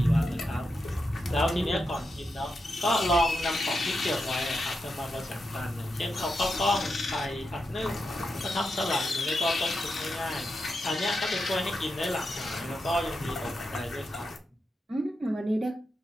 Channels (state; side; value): normal; both; correlation 0.86